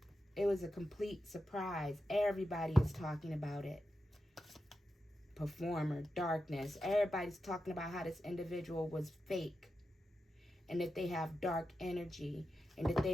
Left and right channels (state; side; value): normal; both; correlation 0.89